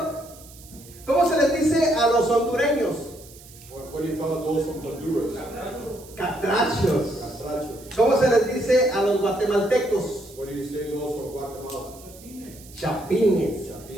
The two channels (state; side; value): noise; right; hiss, 21 dB below the sound